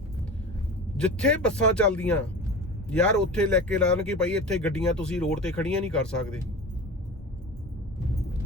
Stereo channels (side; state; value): both; normal; correlation 0.32